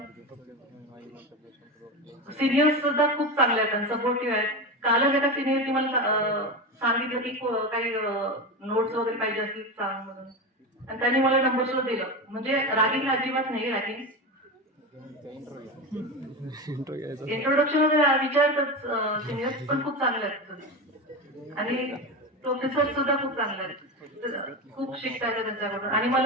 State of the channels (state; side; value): normal; both; correlation 0.20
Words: सिनियर्स सुद्धा खूप चांगले आहेत, सपोर्टिव्ह आहेत. कालच एका सिनियरनी मला सांगितलं की काही नोट्स वगैरे पाहिजे असतील सांग म्हणून, आणि त्यांनी मला नंबर सुद्धा दिलं. म्हणजे रॅगिंग अजिबात नाही. रॅगिंग इंट्रोडक्शन विचारतात सिनियर्स, पण खूप चांगले आहेत. आणि प्रोफेसर सुद्धा खूप चांगले आहेत, खूप शिकता येतं त्यांच्याकडून. आणि